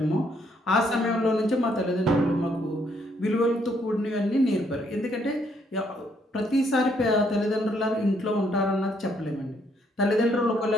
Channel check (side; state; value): both; normal; correlation 0.70